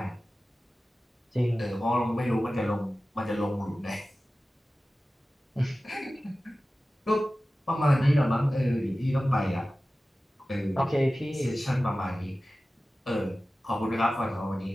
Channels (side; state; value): both; normal; correlation 0.96